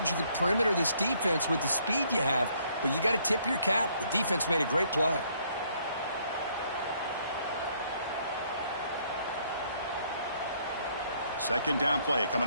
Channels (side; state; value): both; inverted; correlation -0.67